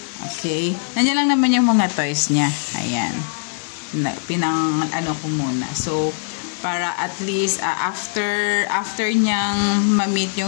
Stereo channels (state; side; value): silent; right; 61 dB below the other